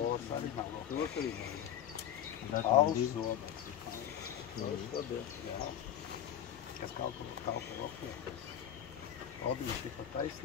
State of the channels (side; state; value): right; quieter; 10.2 dB